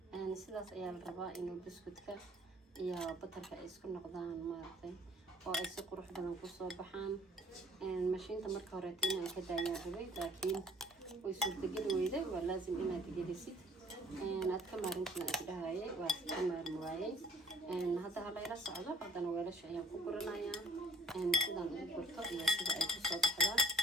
sidaas ayaa la rabaa inuu buskudka iyo batarka ay isku noqdaan maartay oo ay si qurux badan ku soo baxaan mashiinta marka hore inaan ka daayaan rabay laakiin way suurtagali weyday waa laazim inaad gelisid aad ka maarintina isdhahayay waa ka maarmi waayay hadda halayla socdo haddana weelasha ayaan ku guranayaa sidaan ugu gurto iyo sida ay ku soo baxdaan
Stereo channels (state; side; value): normal; both; correlation 0.56